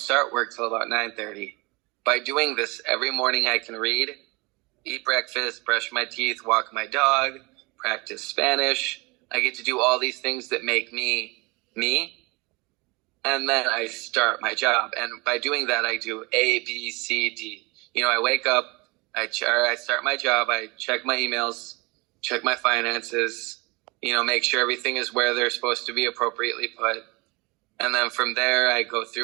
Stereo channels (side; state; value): left; quieter; 26.3 dB